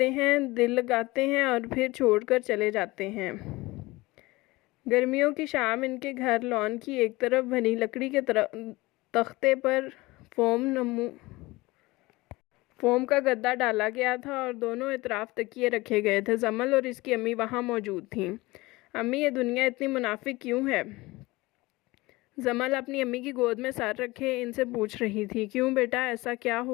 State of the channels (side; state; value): right; quieter; 21.2 dB